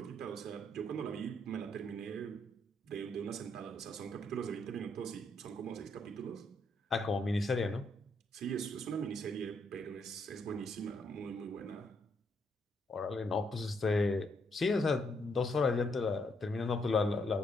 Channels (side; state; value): both; normal; correlation 0.74